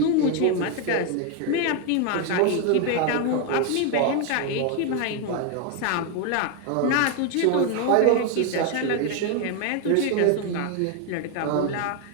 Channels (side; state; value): both; different; correlation 0.01